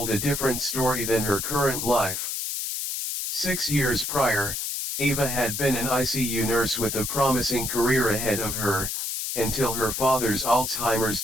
a different story than her current life. 6 years prior, Ava had been an ICU nurse with a promising career ahead of her, until her father's Alzheimer's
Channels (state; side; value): noise; left; hiss, 3 dB below the sound